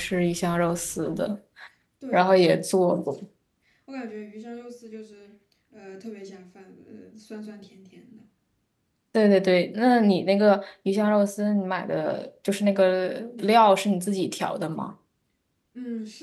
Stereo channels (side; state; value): both; identical; correlation 1.00